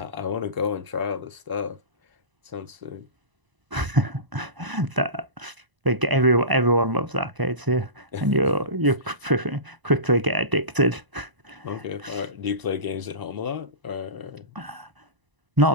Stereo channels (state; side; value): late; left; 1.0 ms